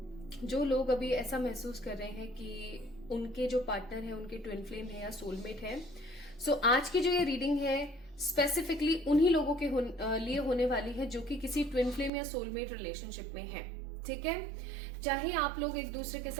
जो लोग अभी ऐसा महसूस कर रहे हैं कि उनके जो पार्टनर है उनके ट्विन फ्लेम है या सोलमेट है. सो आज की जो ये रीडिंग है स्पेसिफिकली उन्हीं लोगों के लिए होने वाली है जो कि किसी ट्विन फ्लेम या सोलमेट रिलेशनशिप में है. ठीक है, चाहे आप लोग एक दूसरे के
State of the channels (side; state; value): left; drops out; at 12.1 s